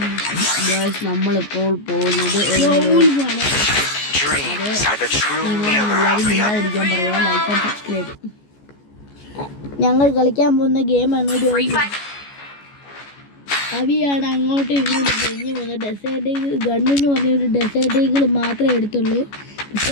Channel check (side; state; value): right; late; 14 ms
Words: ഗൈസ് നമ്മളിപ്പോൾ പോകുന്നത് ഞങ്ങൾ കളിക്കാൻ പോകുന്ന ഗെയിമാണ്. അവിയാണ് അങ്ങോട്ടും ഇങ്ങോട്ടും കഴിഞ്ഞ് പോകുന്നത്. ഡെസേർട്ട് ഗണ്ണെന്ന് പറഞ്ഞൊരു ഡെസേർട്ടുകൾ മാത്രമേ എടുത്തുള്ളൂ. പക്ഷെ